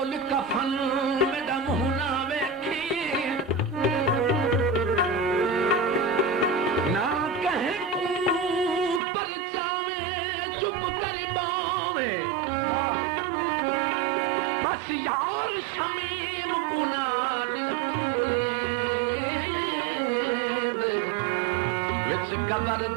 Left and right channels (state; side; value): drops out; left; at 9.0 s